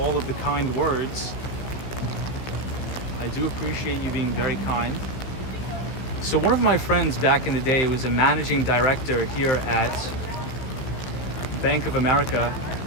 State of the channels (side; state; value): right; late; 16 ms